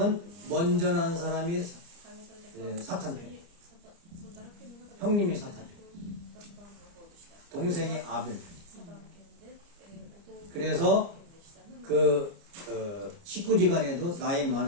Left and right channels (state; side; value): late; left; 29 ms